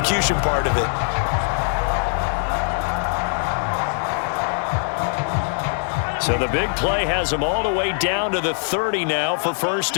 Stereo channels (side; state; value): right; silent; digital silence